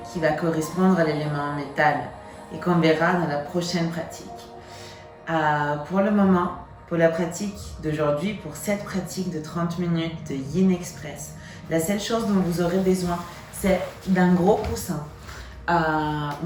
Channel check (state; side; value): identical; both; correlation 1.00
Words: qui va correspondre à l'élément métal et qu'on verra dans la prochaine pratique. Pour le moment, pour la pratique d'aujourd'hui, pour cette pratique de 30 minutes de Yin Express, la seule chose dont vous aurez besoin, c'est d'un gros coussin.